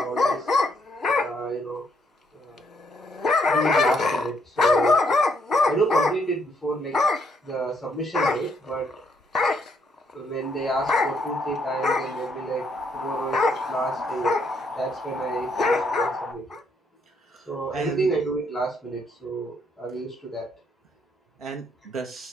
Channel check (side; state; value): both; normal; correlation 0.72